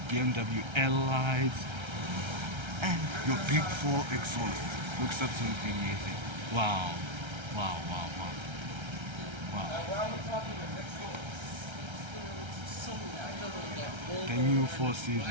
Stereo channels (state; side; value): late; left; 1.3 ms